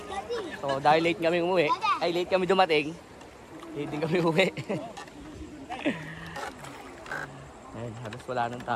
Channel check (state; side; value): identical; both; correlation 1.00